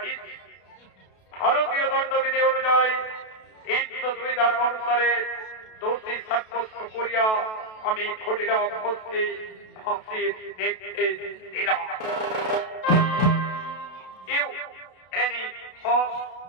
ভারতীয় দণ্ডবিধি অনুযায়ী 302 ধারা অনুসারে দোষী সাব্যস্ত করিয়া আমি ক্ষুদিরাম বোসকে ফাঁসির নির্দেশ দিলাম এনি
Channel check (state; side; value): late; right; 32 ms